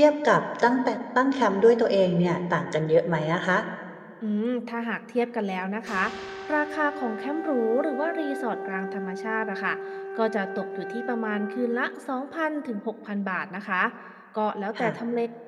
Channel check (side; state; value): both; identical; correlation 1.00